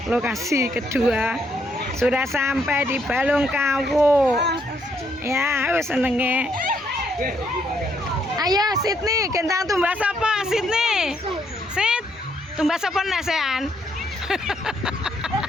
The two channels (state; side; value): normal; both; correlation 0.73